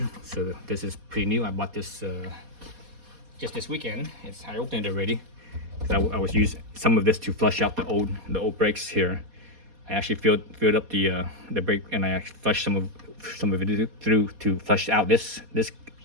So this is pretty new. I bought this just this weekend. I opened it already because I was using some of this to flush out the old brakes here. I actually filled up the brake, and I actually flushed some of it through to flush out this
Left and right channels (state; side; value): late; left; 4.2 ms